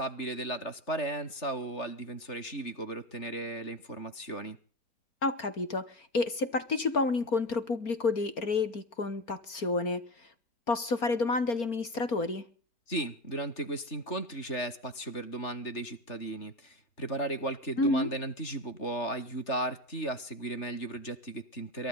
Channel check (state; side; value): late; right; 4.3 ms